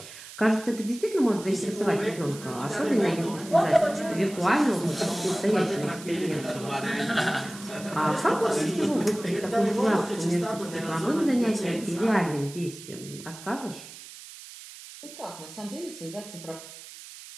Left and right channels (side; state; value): right; noise; hiss, 15 dB below the sound